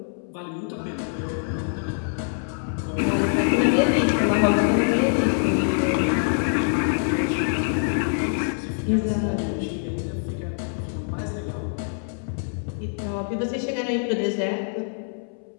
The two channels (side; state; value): right; silent; 62 dB below the other